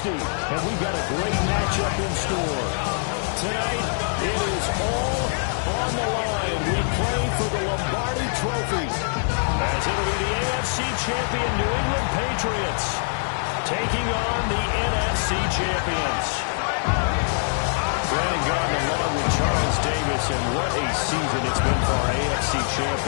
And we've got a great matchup in store. Tonight, it is all on the line. We play for the Lombardi Trophy. As it'll be the AFC champion New England Patriots taking on the NFC champions. Brandon Gardner along with Charles Davis, and what a season it's been for our AFC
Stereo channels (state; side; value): silent; right; 55 dB below the other